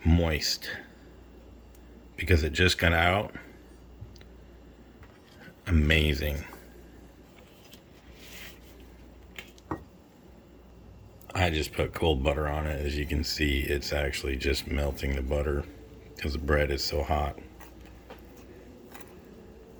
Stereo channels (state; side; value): identical; both; correlation 1.00